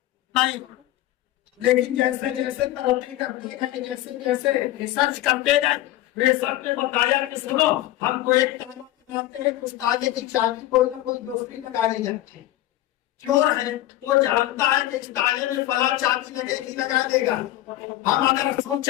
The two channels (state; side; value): quieter; right; 15.0 dB